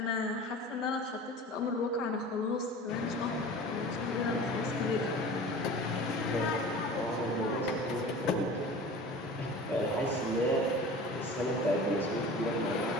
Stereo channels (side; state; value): both; normal; correlation 0.39